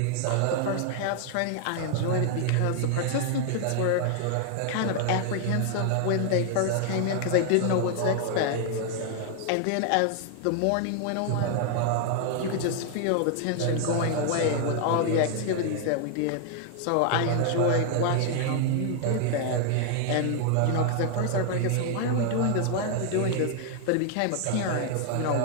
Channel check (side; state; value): both; different; correlation 0.00